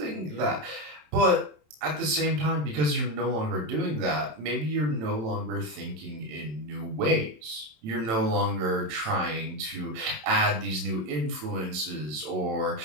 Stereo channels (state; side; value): late; left; 27 ms